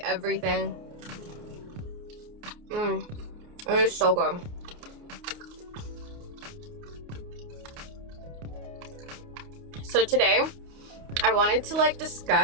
everything. It is so good. So today, I wanted to like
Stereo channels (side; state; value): left; late; 29 ms